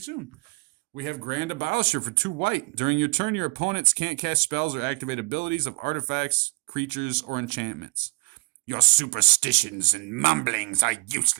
We have Grand Abolisher for 2 white. During your turn, your opponents can't cast spells or activate abilities of artifacts, creatures, or enchantments. Your superstitions and mumblings are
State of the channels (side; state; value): left; quieter; 29.8 dB